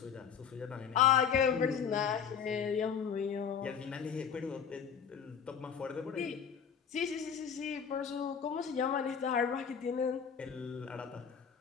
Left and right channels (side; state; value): right; quieter; 7.4 dB